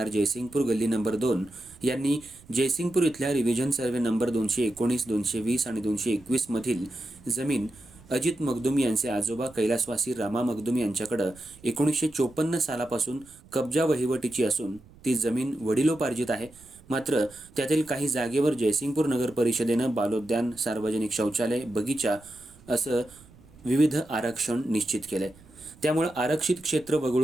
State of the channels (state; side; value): noise; right; rumble, 24 dB below the sound